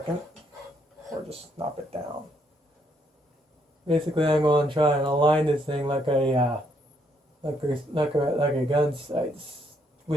or just snap it down. Basically, I'm going to try and align this thing like a gun sights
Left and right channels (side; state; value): both; normal; correlation 0.72